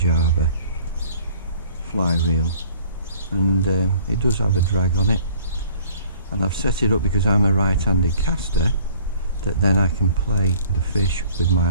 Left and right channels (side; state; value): both; inverted; correlation -0.53